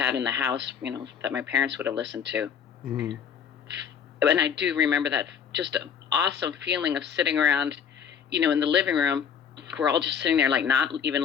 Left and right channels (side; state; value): right; quieter; 7.6 dB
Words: in the house, you know, that my parents would have listened to. Mm-hmm. And I do remember that just an awesome feeling of sitting around, you know, in the living room. We're all just sitting there, like not